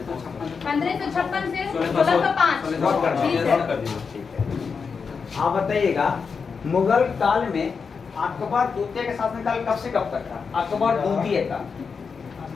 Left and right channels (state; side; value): quieter; right; 5.5 dB